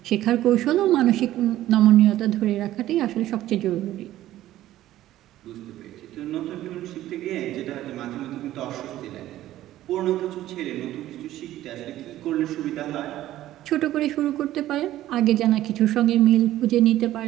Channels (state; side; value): quieter; left; 14.1 dB